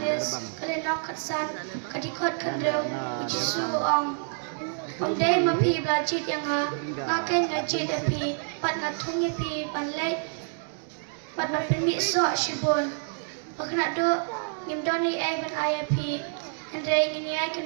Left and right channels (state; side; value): silent; left; 60 dB below the other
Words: kalenok katsan kadikot kandreu jisu ong Day mapi belajit yang ngaken ngajit api pat ngatung api panlay pat mapinmi so shibun makna do ngimdoni ay ban ay api Andre ngini ay kan